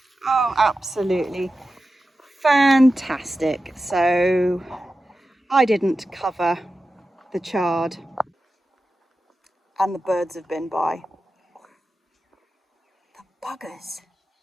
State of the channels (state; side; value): normal; both; correlation 0.92